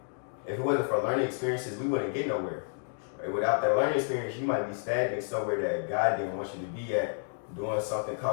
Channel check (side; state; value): right; silent; digital silence